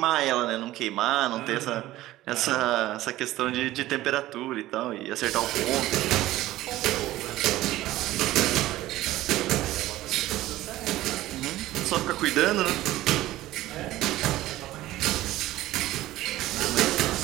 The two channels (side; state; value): left; quieter; 15.9 dB